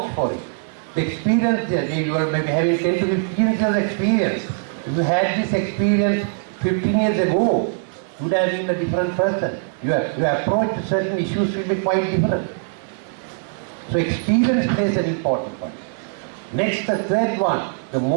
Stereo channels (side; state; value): left; silent; 65 dB below the other